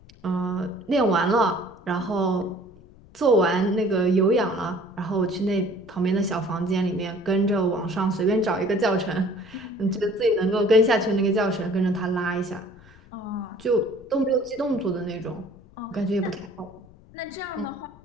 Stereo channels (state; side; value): noise; left; rumble, 24 dB below the sound